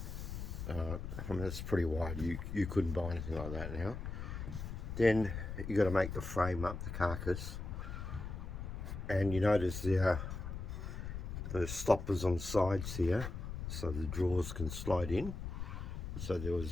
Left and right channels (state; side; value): noise; left; rumble, 6 dB below the sound